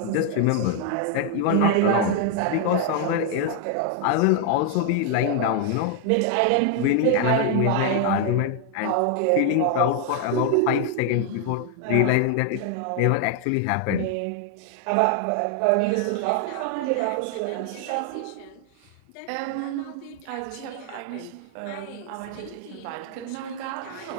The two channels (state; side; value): different; both; correlation 0.00